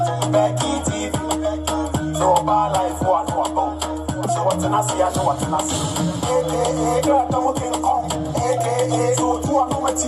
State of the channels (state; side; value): identical; both; correlation 1.00